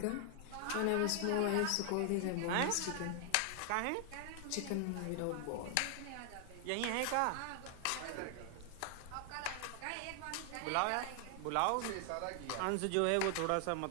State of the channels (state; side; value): different; both; correlation 0.00